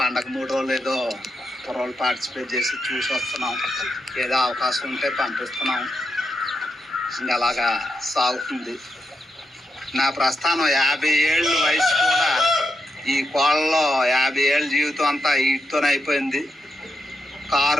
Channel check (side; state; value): both; normal; correlation 0.84